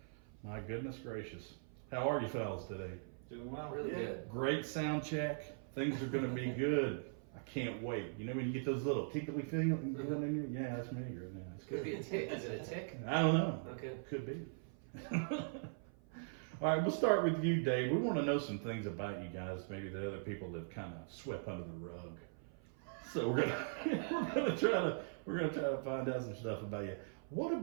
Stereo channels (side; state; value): left; silent; 51 dB below the other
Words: My goodness gracious. How are you fellas today? Doing well. Really good. Great sound check. Things are going to be good. I can't wait. You know when you get those little tickly feelings in you? Yeah, that's me right now. It's Could good. be a tick. Is it a tick? I don't know. Okay. Could be. All right, we'll start with you, Dave. We want to know some things about you guys, maybe that other people have kind of swept under the rug. So we're gonna try to find out some stuff about you. What